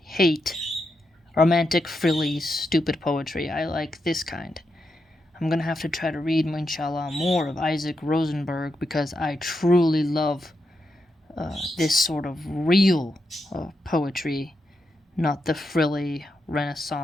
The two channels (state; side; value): normal; both; correlation 0.85